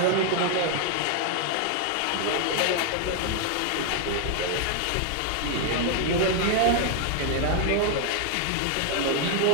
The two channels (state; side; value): different; both; correlation 0.00